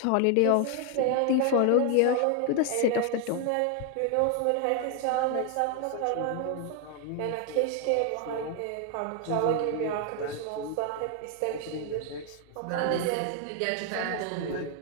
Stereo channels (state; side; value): different; both; correlation 0.01